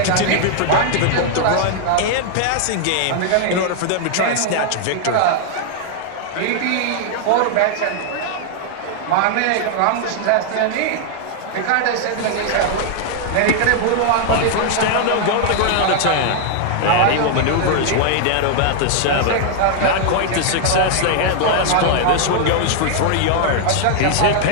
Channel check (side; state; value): both; different; correlation 0.00